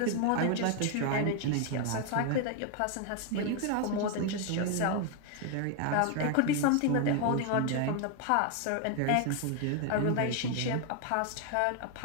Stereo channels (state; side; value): different; both; correlation 0.01